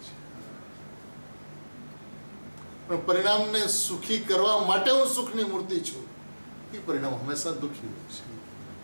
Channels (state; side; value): inverted; both; correlation -1.00